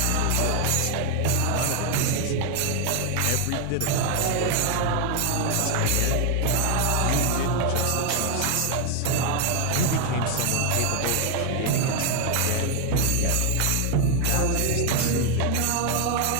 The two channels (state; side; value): different; both; correlation 0.00